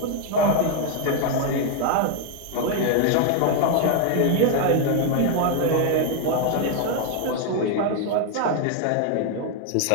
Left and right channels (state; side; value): different; both; correlation 0.00